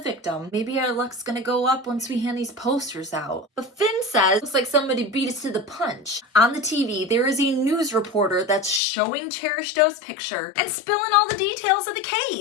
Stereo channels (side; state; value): right; drops out; at 8.8 s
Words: Maybe our luck's gonna go up once we hand these posters out. But Finn says, looks like somebody beat us to the punch. On the TV, there is a news reporter that's showing Cherish Doe's picture and spilling all the details of the